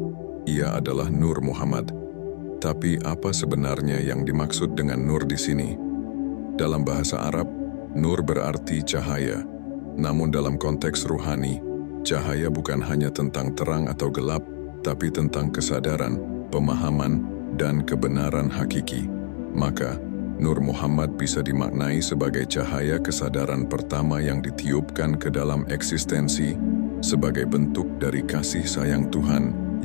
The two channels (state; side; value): silent; right; digital silence